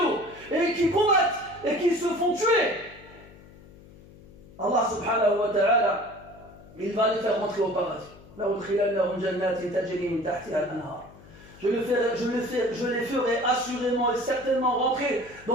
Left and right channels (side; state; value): left; noise; hum, 22 dB below the sound